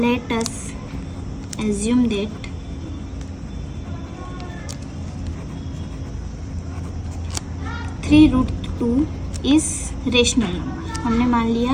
us assume that 3 root 2 is rational number. हमने मान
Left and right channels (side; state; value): both; identical; correlation 1.00